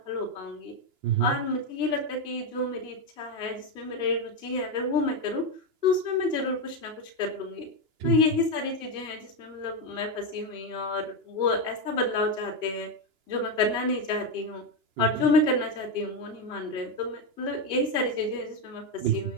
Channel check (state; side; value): late; left; 2.9 ms